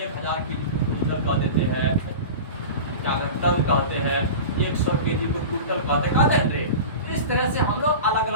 की क्विंटल कह देते हैं, क्या टन कहते हैं, 100 केजी को क्विंटल कहते हैं रे। इस तरह से हम लोग अलग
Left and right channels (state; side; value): inverted; both; correlation -0.31